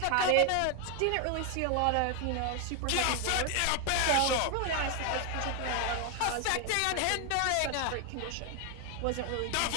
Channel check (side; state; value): both; different; correlation 0.01